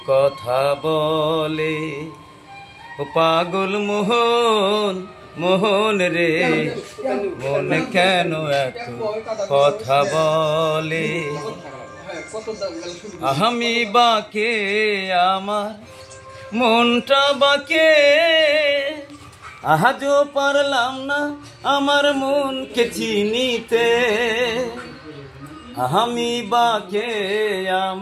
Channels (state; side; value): identical; both; correlation 1.00